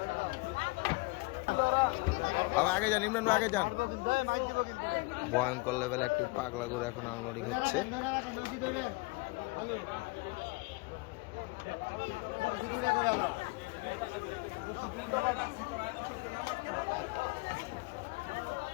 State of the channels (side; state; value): right; quieter; 25.5 dB